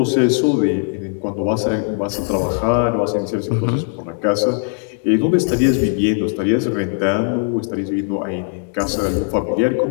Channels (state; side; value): silent; right; 56 dB below the other